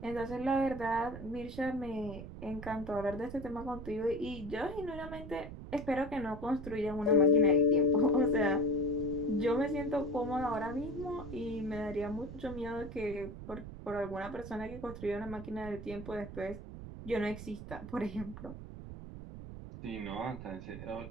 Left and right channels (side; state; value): right; noise; rumble, 11 dB below the sound